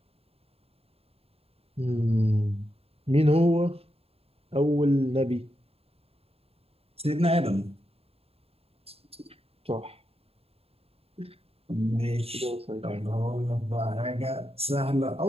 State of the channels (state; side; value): late; left; 0.29 ms